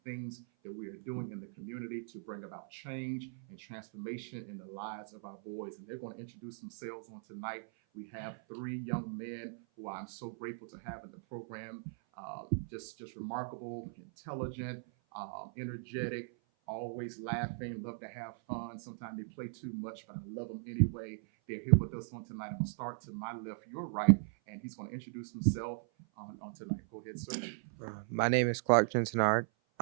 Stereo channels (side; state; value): left; silent; 52 dB below the other